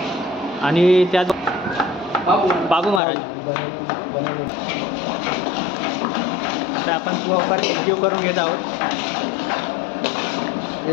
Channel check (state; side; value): drops out; right; at 3.0 s